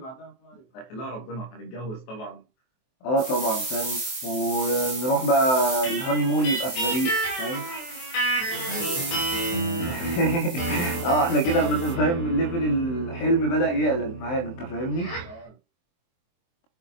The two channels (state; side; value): late; right; 23 ms